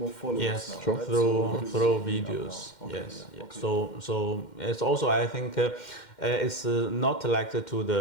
followers. Yes, now, right? through videos. Okay, yes. So it's also, I think it's not like to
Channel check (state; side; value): late; right; 2.1 ms